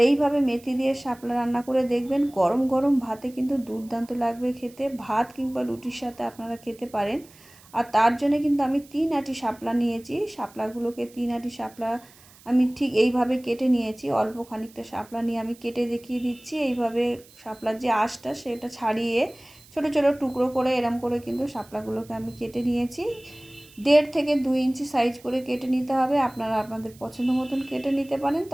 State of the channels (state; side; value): noise; right; hiss, 25 dB below the sound